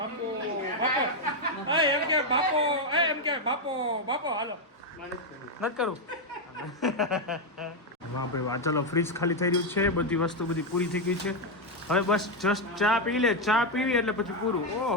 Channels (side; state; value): both; normal; correlation 0.03